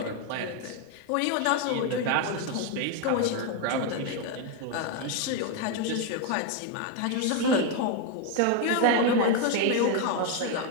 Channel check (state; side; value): different; both; correlation 0.01